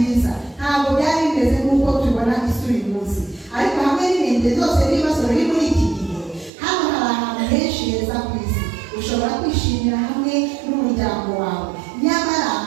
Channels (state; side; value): drops out; left; at 6.5 s